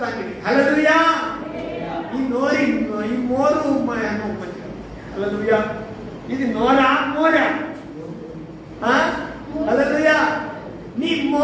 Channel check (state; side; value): identical; both; correlation 1.00